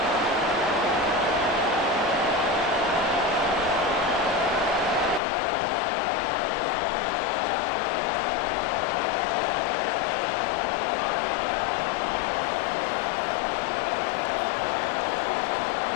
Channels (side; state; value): right; drops out; at 5.2 s